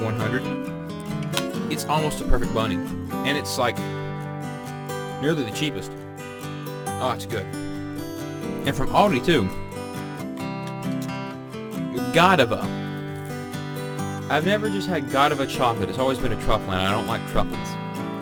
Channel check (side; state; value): both; identical; correlation 1.00